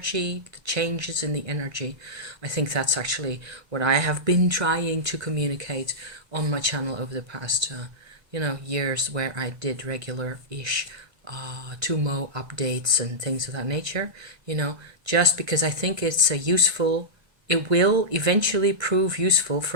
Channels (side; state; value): left; late; 1.2 ms